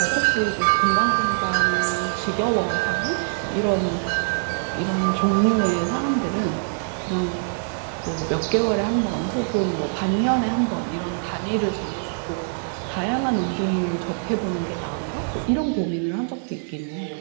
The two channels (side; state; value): left; silent; digital silence